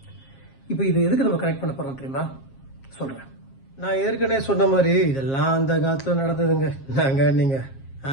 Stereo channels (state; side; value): late; right; 7.5 ms